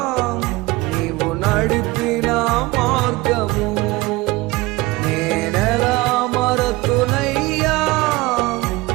నీవు నడిపిన మార్గము, నేనెలా మరతునయ్యా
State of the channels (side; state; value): left; quieter; 21.4 dB